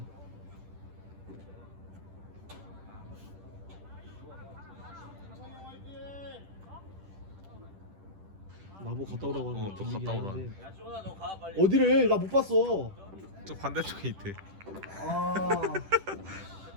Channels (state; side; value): late; left; 10 ms